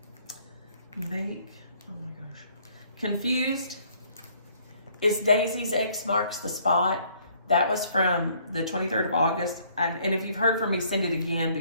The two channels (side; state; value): both; inverted; correlation -0.62